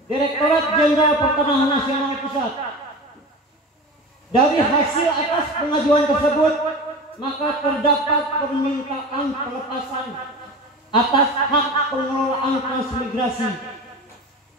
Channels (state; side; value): normal; both; correlation 0.31